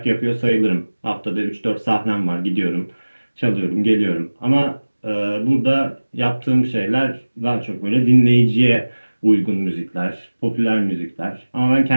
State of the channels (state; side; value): inverted; both; correlation -1.00